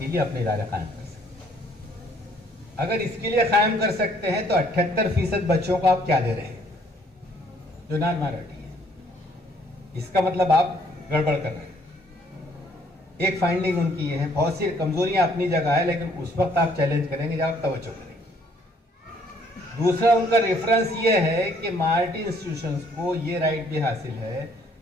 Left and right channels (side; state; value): both; normal; correlation 0.63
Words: لیے اپنے ادارے قائم کر سکتے ہیں. اگر اس کے لیے قائم کر سکتے ہیں تو 78% بچوں کو آپ کیا دے رہے ہیں جو نان مائنارٹی ہے. اس کا مطلب آپ گڑبڑ کر رہے ہیں. ایک فائنڈنگ ان کی یہ ہے. بہت سی کمزوریاں اپنی جگہ ہے، لیکن اس وقت آپ چیلنج کریں گے جب آپ توجہ کریں گے. دوسرا ان کا ریفرنس یہ ہے کہ مائنارٹی انسٹیٹیوشنز کو یہ رائٹ بھی حاصل ہے